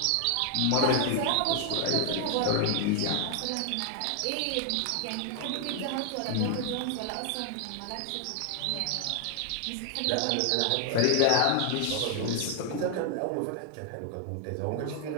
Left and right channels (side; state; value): both; different; correlation 0.00